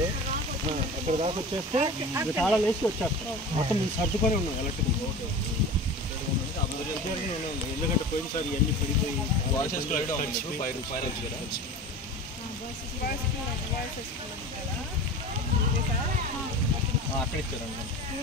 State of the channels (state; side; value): normal; both; correlation 0.34